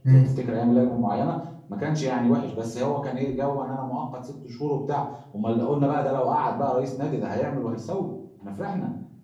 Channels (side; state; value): both; identical; correlation 1.00